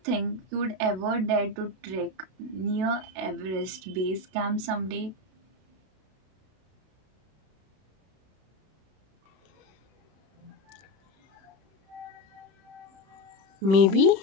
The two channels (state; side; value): late; left; 32 ms